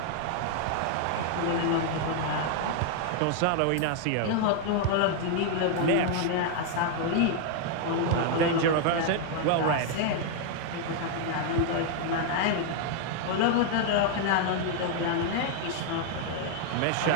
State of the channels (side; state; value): both; different; correlation 0.00